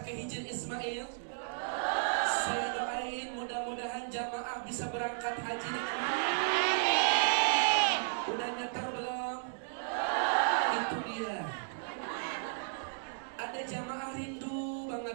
ke Hijr Ismail? Saya doain mudah-mudahan jamaah bisa berangkat haji dengan udah nyetar belum? Itu dia. Ada jamaah rindu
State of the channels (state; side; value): silent; left; digital silence